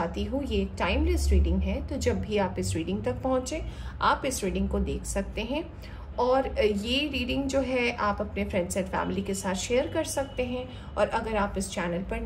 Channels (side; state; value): both; identical; correlation 1.00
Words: हूँ ये एक टाइमलेस रीडिंग है, तो जब भी आप इस रीडिंग तक पहुँचे आप इस रीडिंग को देख सकते हैं। और ये रीडिंग जो है आप अपने फ्रेंड्स एंड फैमिली के साथ शेयर कर सकते हैं। और अगर आप इस चैनल पर